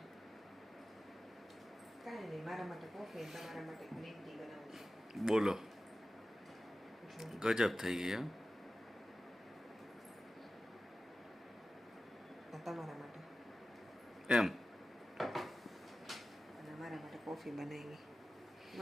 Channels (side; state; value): both; normal; correlation 0.95